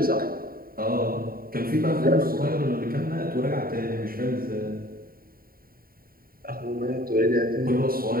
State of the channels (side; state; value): left; late; 0.43 ms